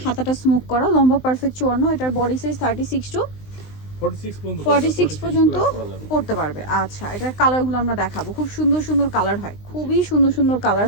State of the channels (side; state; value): right; late; 19 ms